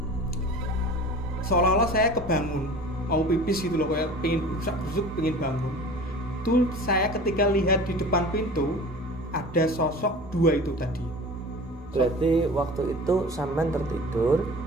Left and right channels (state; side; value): normal; both; correlation 0.40